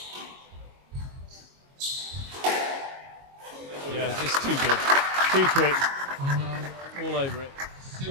Yeah, just too good. Too quick. All over it.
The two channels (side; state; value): left; late; 22 ms